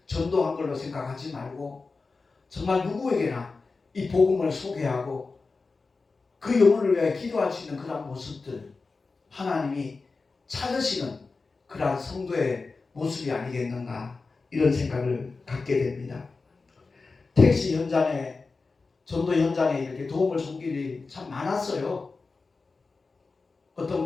전도한 걸로 생각하지 말고, 정말 누구에게나 이 복음을 소개하고 그 영혼을 위해 기도할 수 있는 그런 모습들, 하나님이 찾으시는 그러한 성도의 모습이 아니겠는가, 이런 생각을 갖게 됩니다. 택시 현장에, 전도 현장에 이렇게 도움을 준 일이 참 많았어요. 어떤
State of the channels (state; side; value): quieter; right; 4.1 dB